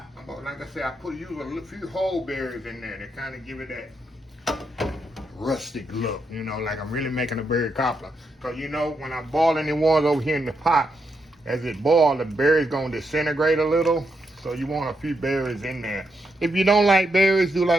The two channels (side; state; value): both; normal; correlation 0.81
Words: I said, I use a few whole berries in there to kind of give it that rustic look, you know, like I'm really making a berry cobbler. Because you know, when I boil any water over here in the pot, as it boils, the berries gonna disintegrate a little. So you want a few berries in there. If you don't like berries, do